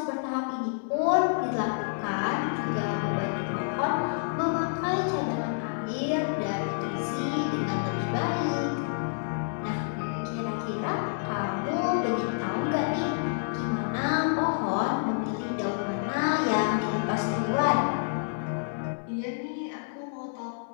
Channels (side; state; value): right; silent; 59 dB below the other